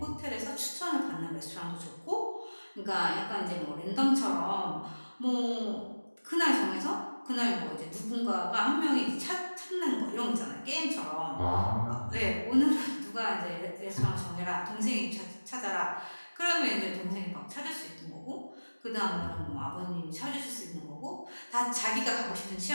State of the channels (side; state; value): both; inverted; correlation -1.00